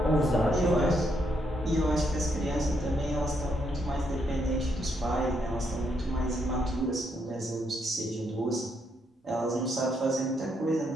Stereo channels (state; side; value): normal; both; correlation 0.76